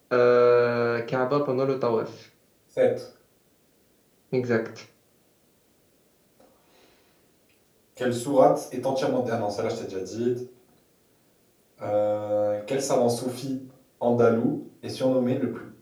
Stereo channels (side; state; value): both; identical; correlation 1.00